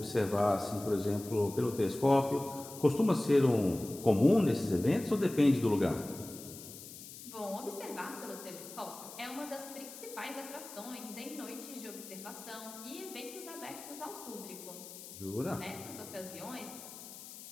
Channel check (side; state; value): left; noise; hiss, 14 dB below the sound